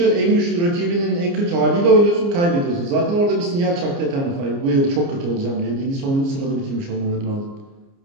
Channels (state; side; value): late; left; 29 ms